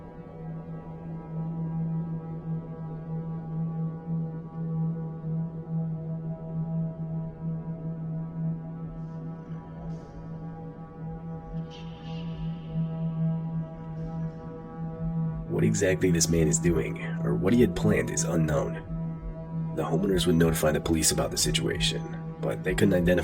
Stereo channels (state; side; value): identical; both; correlation 1.00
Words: what exactly this man is doing or what he had planned is unknown. The homeowners would notify the police about the situation, but they couldn't